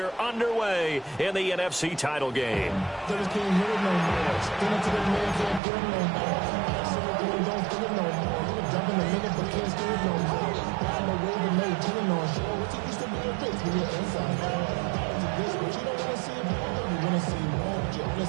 underway in the NFC title game?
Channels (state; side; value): drops out; left; at 5.6 s